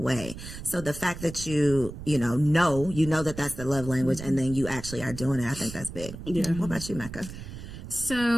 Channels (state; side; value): noise; right; rumble, 11 dB below the sound